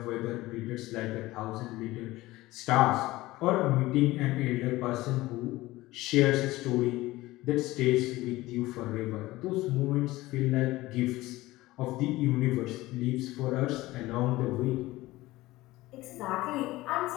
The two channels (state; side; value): quieter; right; 18.5 dB